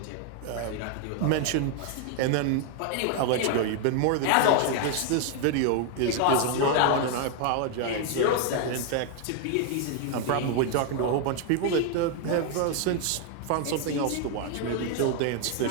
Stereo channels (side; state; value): both; different; correlation 0.00